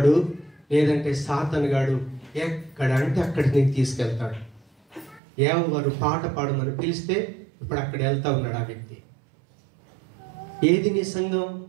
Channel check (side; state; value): left; drops out; at 5.2 s